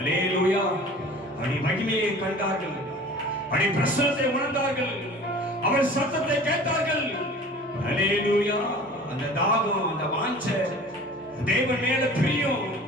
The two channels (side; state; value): both; normal; correlation 0.43